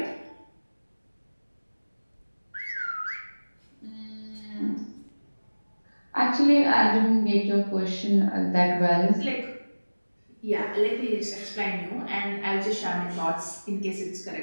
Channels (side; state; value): both; inverted; correlation -1.00